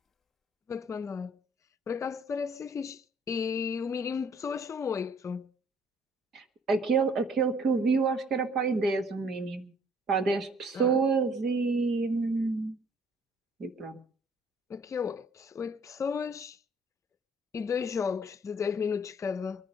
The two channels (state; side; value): normal; both; correlation 0.59